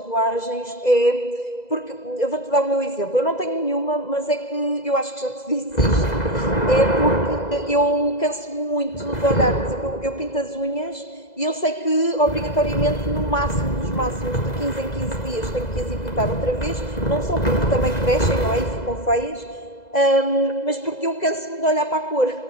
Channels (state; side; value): late; right; 2.0 ms